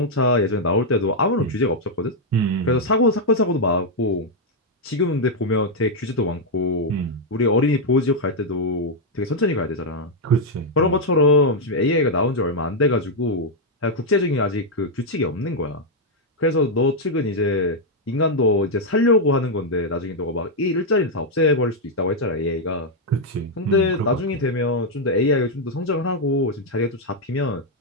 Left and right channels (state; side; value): normal; both; correlation -0.01